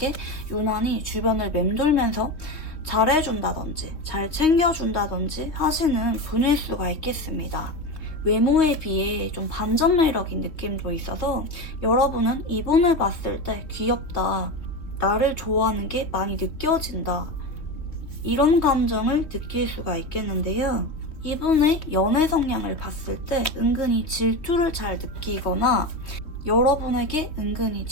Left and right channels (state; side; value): late; right; 3.2 ms